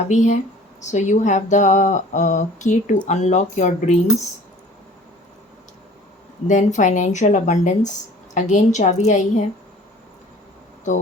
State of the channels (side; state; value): both; normal; correlation 0.48